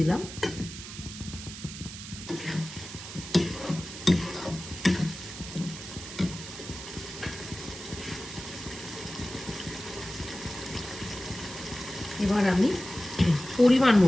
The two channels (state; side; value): noise; right; hiss, 11 dB below the sound